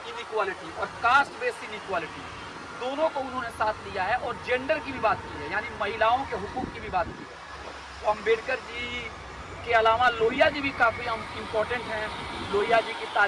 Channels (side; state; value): both; identical; correlation 1.00